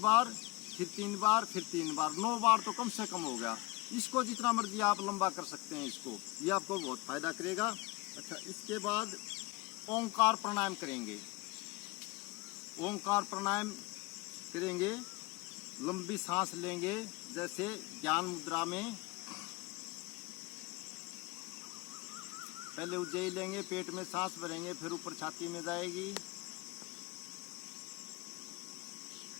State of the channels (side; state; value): right; quieter; 23.2 dB